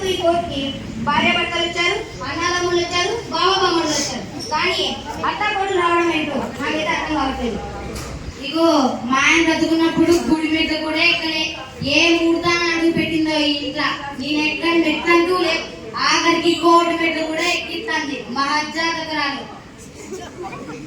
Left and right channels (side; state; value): both; identical; correlation 1.00